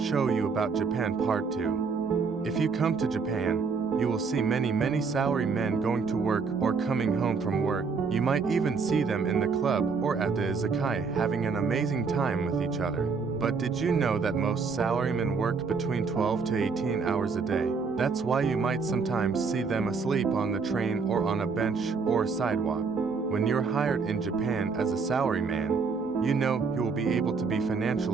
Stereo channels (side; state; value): left; quieter; 5.0 dB